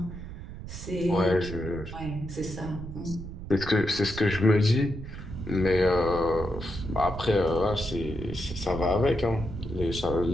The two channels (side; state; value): right; noise; rumble, 10 dB below the sound